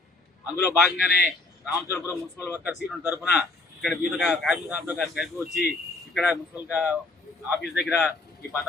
అందులో భాగంగానే రామచంద్రపురం మున్సిపల్ వర్కర్స్ యూనియన్ తరఫున ఇక్కడ వివిధ కార్మిక సంస్థలు కలిసి వచ్చి ఇక్కడ మున్సిపల్ ఆఫీస్ దగ్గర ఈ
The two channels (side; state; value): right; quieter; 3.2 dB